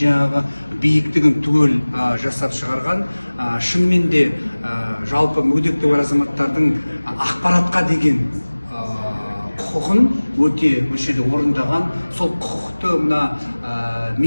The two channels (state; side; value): inverted; both; correlation -1.00